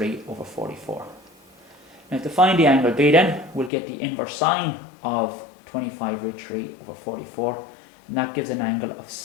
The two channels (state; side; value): drops out; right; at 3.7 s